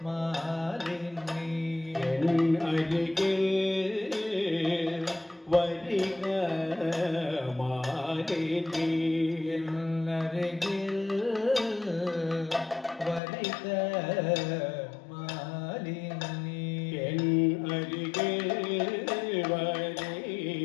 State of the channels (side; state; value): right; drops out; at 13.2 s